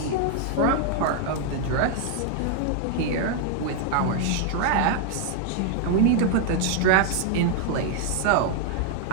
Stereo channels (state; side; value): different; both; correlation 0.00